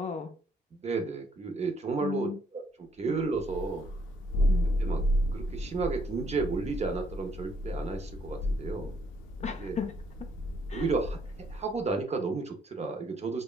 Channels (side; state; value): both; normal; correlation 0.69